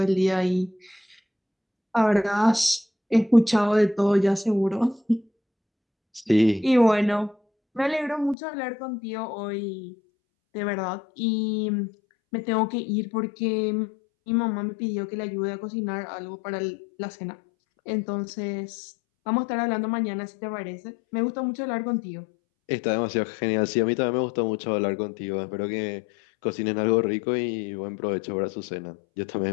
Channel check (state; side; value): drops out; right; at 8.3 s